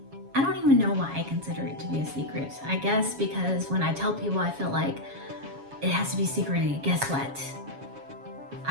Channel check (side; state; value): left; late; 7.2 ms